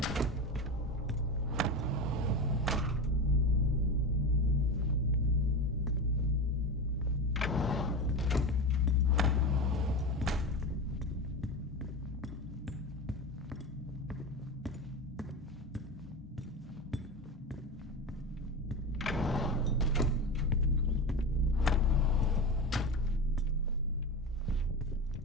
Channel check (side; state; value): both; normal; correlation 0.22